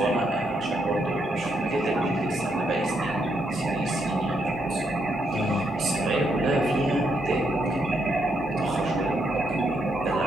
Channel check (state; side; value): normal; both; correlation 0.77